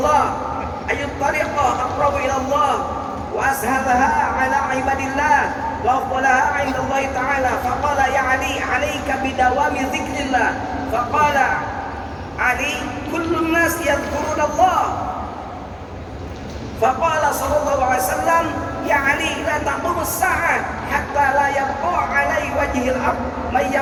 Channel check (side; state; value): both; identical; correlation 1.00